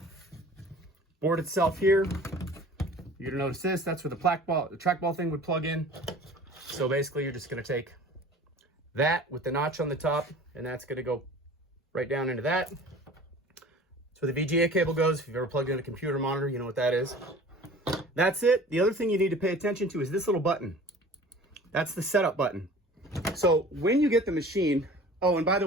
board itself here, you're going to notice this. That's where the trackball thing would plug in. So basically you're just going to take that with the notch on the top, and that's going to go right down into that. That's where the VGA cable goes. If you've ever plugged in a computer monitor, you know what that is. That's it. The other thing you need to pay attention to is this little button. That's the setup button. So when you get the machine, oh, and by the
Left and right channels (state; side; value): normal; both; correlation 0.44